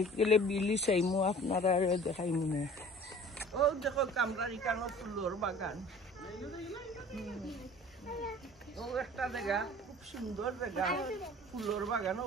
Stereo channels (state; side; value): normal; both; correlation 0.46